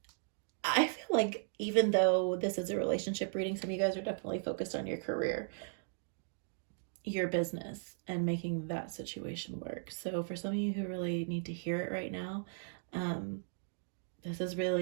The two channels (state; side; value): silent; left; digital silence